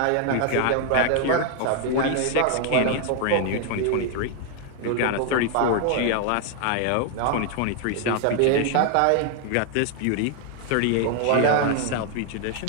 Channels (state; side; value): different; both; correlation 0.00